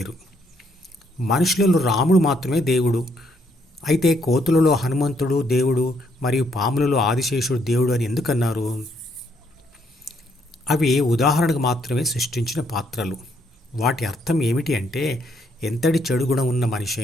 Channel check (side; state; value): both; normal; correlation 0.71